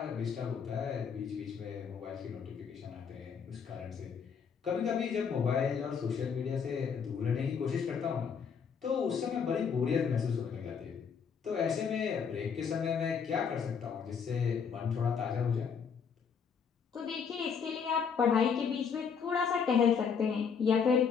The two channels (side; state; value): right; quieter; 6.5 dB